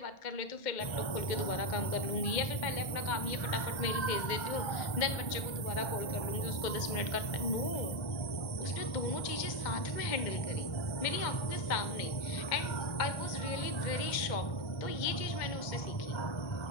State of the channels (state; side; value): late; right; 1.3 ms